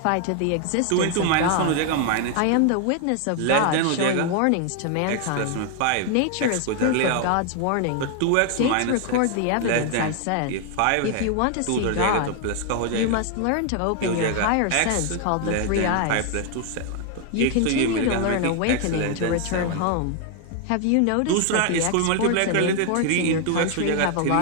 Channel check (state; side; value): different; both; correlation 0.00